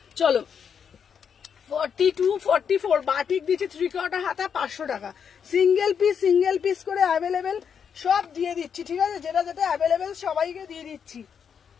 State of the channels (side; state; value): right; quieter; 7.2 dB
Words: চলো 42, 44 বাটিক দিচ্ছি 3/4 হাতা 500 টাকা। সিঙ্গেল পিস করে অ্যাভেলেবেল সব দিয়ে দিচ্ছি। ঠিক আছে, যেটা যেটা অ্যাভেলেবেল সবাইকে দিয়ে দিচ্ছি।